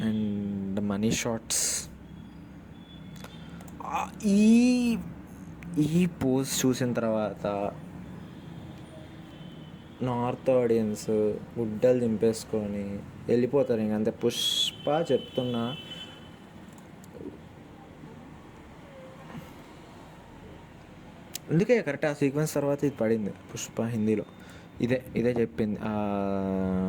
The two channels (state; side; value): identical; both; correlation 1.00